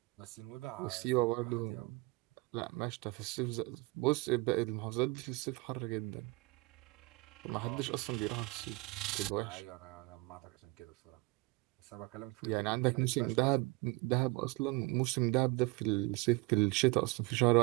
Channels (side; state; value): left; quieter; 23.0 dB